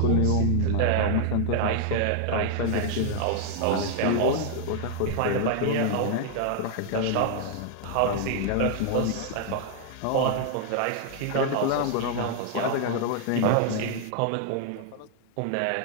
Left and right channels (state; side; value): different; both; correlation 0.00